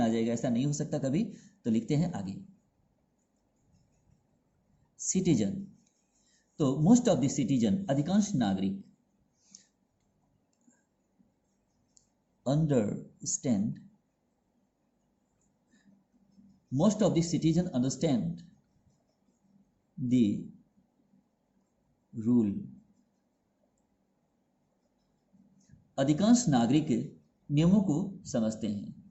जाएगा, ऐसा नहीं हो सकता कभी। तो लिखते हैं आगे सिटीजन। तो मोस्ट ऑफ द सिटीजन, अधिकांश नागरिक, understand, most of the citizen understand the rule। अधिकांश नागरिक नियमों को समझते हैं।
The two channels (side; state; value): both; identical; correlation 1.00